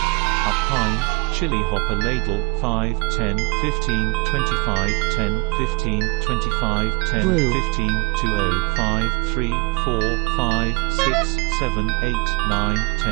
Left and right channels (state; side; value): quieter; left; 28.1 dB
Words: Up pine, chili hopper ladle, 5, 10, 15, 25, 10, 15, 25, 10, Blue. 15, 20, 5, 3, 4, 5, 6, 7, 8, 9,